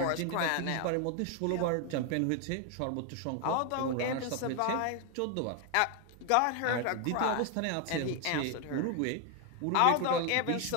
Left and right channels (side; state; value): both; different; correlation 0.01